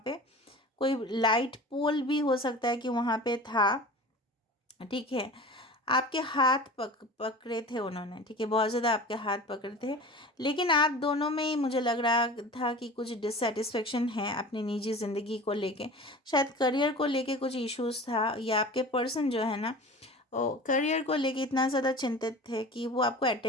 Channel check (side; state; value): both; normal; correlation 0.37